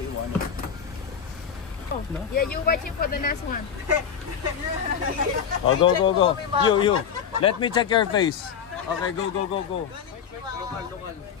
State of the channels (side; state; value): right; quieter; 7.6 dB